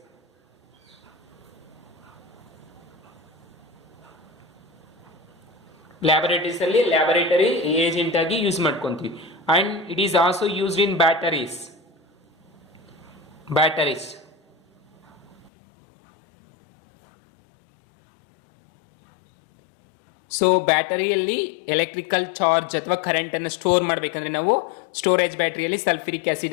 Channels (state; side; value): drops out; right; at 15.5 s